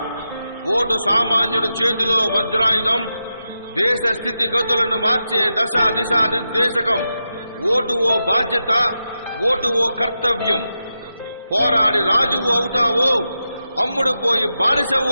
vote సామాన్యుడి చేతిలో వజ్రాయుధం, దేశ స్థితిగతులను మార్చే దశ దిశ నిర్దేశకం. ఓటు ఓ బాధ్యత, ఓటు ఓ కర్తవ్యం. పోరాడి రాజువు అవుతావో, అమ్ముడు పోయి బానిసవు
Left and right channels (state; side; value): inverted; both; correlation -0.89